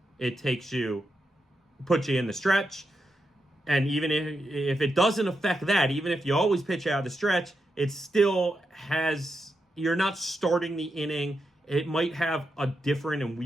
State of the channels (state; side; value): normal; both; correlation 0.86